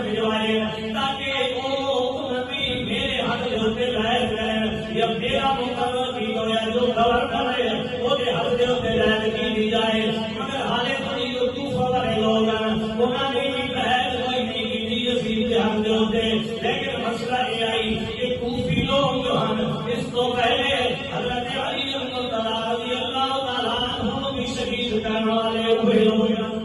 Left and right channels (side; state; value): both; identical; correlation 1.00